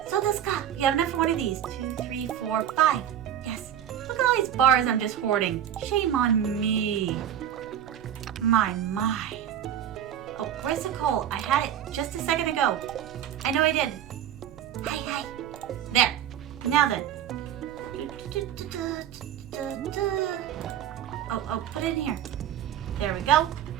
So this guy, you have enough for one of these. 2, 3, 4, 5. Yes. Look at all these bars I'm just hoarding. Shame on me. My. Oh, where's the coal? I had it just a second ago. I know I did. Hi. There. Now then. Oh, put it in here. There we go.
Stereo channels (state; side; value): quieter; left; 10.3 dB